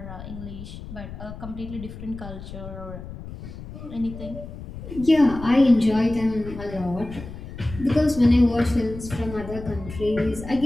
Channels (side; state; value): left; noise; rumble, 12 dB below the sound